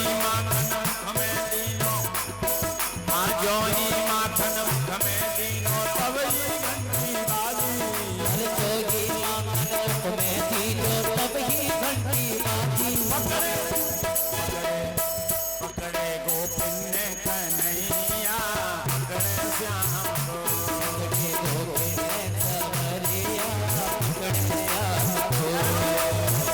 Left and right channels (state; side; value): identical; both; correlation 1.00